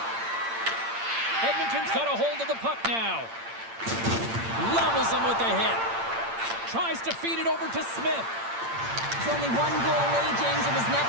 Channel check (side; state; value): left; late; 8.8 ms